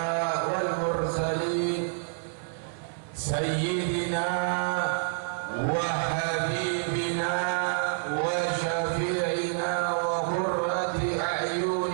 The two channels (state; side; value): silent; left; 59 dB below the other